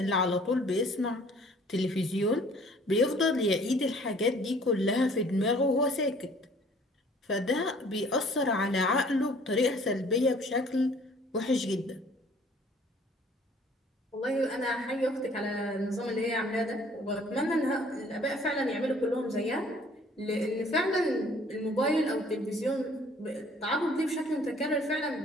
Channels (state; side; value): normal; both; correlation 0.55